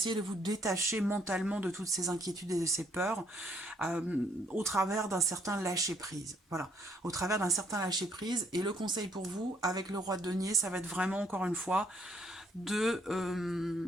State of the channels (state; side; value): normal; both; correlation 0.67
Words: de vous détacher mentalement de toutes ces inquiétudes et de ces peurs au travers d'un certain lâcher-prise. Voilà, au travers d'un certain lâcher-prise. Et le conseil pour vous, avec le roi de denier, ça va être vraiment, encore une fois, de